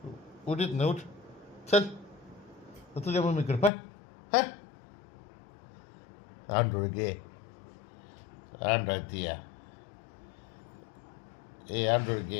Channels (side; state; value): right; drops out; at 3.7 s